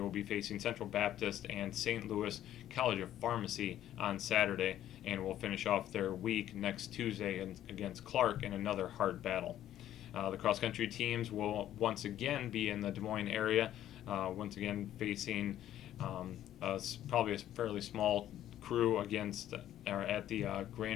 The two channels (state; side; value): quieter; right; 12.1 dB